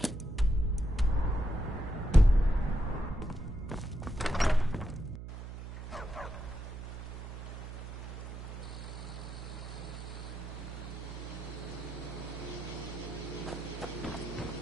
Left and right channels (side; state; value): right; noise; hum, 9 dB below the sound